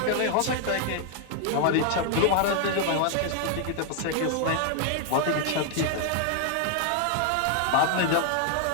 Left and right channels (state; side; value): different; both; correlation 0.00